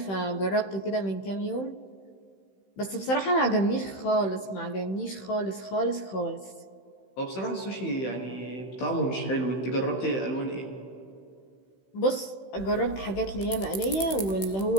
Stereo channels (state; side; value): late; right; 16 ms